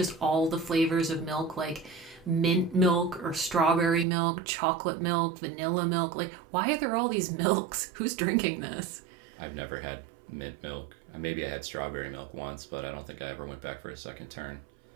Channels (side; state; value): left; drops out; at 4.0 s